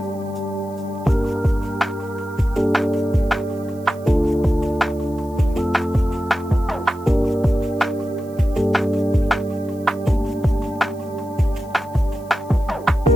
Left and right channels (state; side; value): noise; right; hiss, 27 dB below the sound